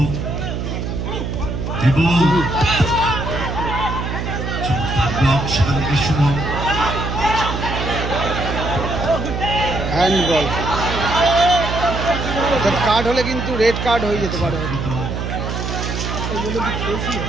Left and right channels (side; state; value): right; noise; hum, 3 dB below the sound